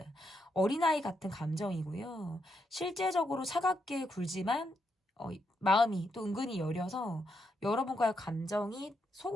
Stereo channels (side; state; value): both; normal; correlation 0.80